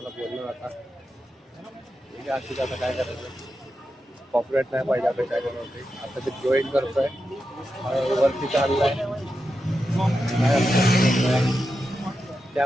बोललो आता अशी आता काय करायचं, कॉपरेट नाही पाहिजे आपण काय करणार. आता ते जॉईन करतोय, वरती चाललाय,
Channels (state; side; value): normal; both; correlation 0.89